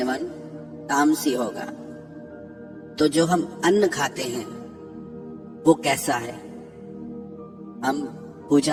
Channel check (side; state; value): both; identical; correlation 1.00